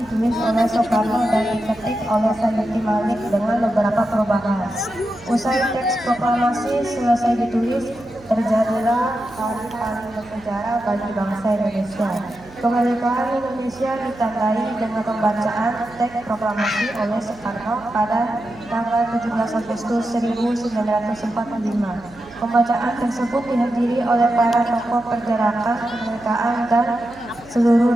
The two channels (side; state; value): right; noise; hum, 23 dB below the sound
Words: oleh Soekarno dan diketik oleh Sayuti Malik dengan beberapa perubahan. Usai teks proklamasi selesai ditulis, terjadilah hari paling bersejarah bagi bangsa Indonesia. Kemerdekaan Indonesia ditandai dengan pembacaan teks proklamasi oleh Soekarno pada tanggal 17 Agustus 1945. Pembacaan tersebut dihadiri oleh para tokoh pergerakan kemerdekaan dan seluruh